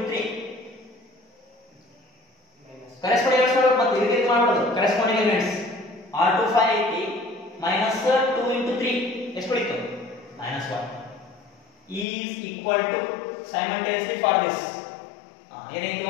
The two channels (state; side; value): drops out; right; at 12.1 s